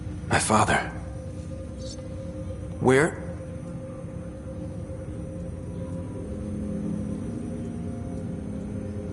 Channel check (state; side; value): identical; both; correlation 1.00